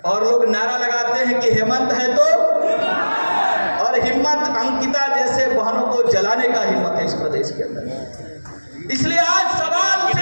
और लोग नारा लगाते हैं कि हेमंत है तो, और हिम्मत अंकिता जैसे बहनों को जलाने का हिम्मत है इस प्रदेश के अंदर। इसलिए आज सवाल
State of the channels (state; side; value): inverted; both; correlation -1.00